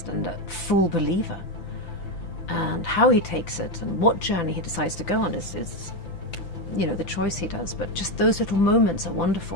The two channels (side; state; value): right; late; 5.9 ms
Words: and a full believer, and how he takes it and what journey he decides to go on is the choice he does. But just those little moments are